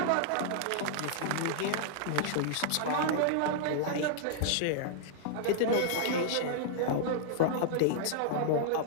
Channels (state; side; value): different; both; correlation -0.01